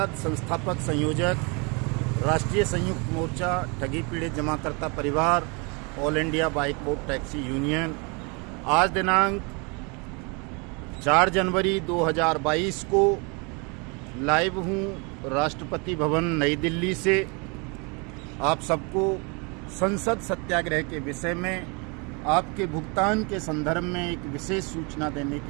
संस्थापक संयोजक, राष्ट्रीय संयुक्त मोर्चा ठगी पीड़ित जमाकर्ता परिवार, ऑल इंडिया बाइकबोट टैक्सी यूनियन। आज दिनांक 4 जनवरी 2022 को लाइव हूँ राष्ट्रपति भवन नई दिल्ली से। आप सबको संसद सत्याग्रह के विषय में आपके भुगतान के संदर्भ में एक विशेष सूचना देने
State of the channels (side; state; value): left; quieter; 31.5 dB